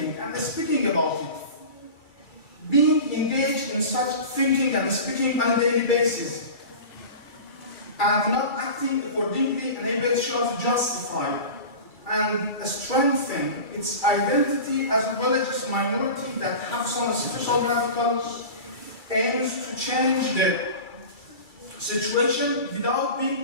and speaking about it. Being engaged in such thinking and speaking on a daily basis, and not acting accordingly enables Shia to justify and strengthen its identity as a religious minority that have some special radical aims to change the situation without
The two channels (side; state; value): right; late; 2.3 ms